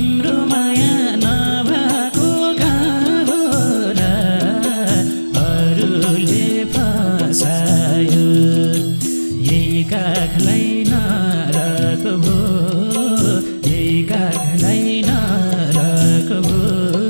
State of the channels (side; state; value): both; inverted; correlation -1.00